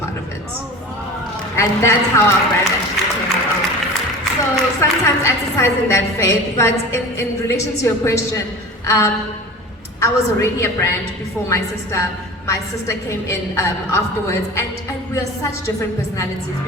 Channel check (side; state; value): both; normal; correlation 0.36